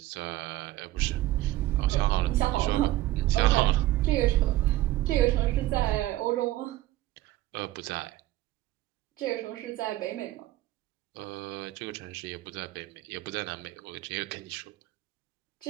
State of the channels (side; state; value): left; quieter; 15.9 dB